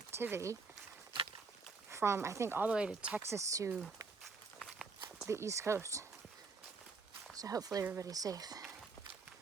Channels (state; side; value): quieter; left; 4.4 dB